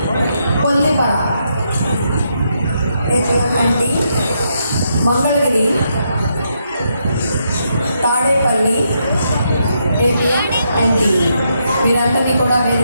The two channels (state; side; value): inverted; both; correlation -0.79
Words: కొల్లిపర ఏపీఎంఎన్టీ, మంగళగిరి తాడేపల్లి ఏపీఎంఎన్టీ వీరందరినీ కూడా